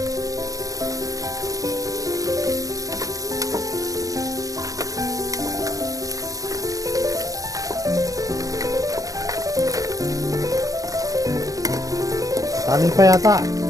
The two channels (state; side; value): late; left; 0.17 ms